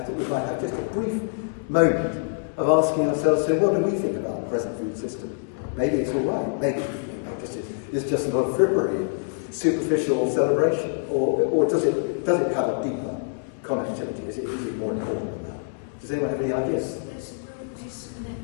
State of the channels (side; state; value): right; silent; digital silence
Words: thought we might have just a brief moment of asking ourselves, so what do we think about the present food system? Maybe it's all right, maybe it's just a lot of frippery, superficial celebration, or does it have a deeper connectivity? Is it more important than that? Does anyone have any ideas? There's a real